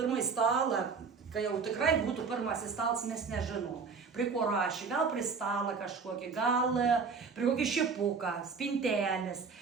stalą, kai jau tikrai būtų pirmasis stalas, mes nežinom. Prie ko rašė, gal prie stalą kažkokį, gal prie kokį šipuką, spintelės.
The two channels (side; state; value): left; quieter; 5.2 dB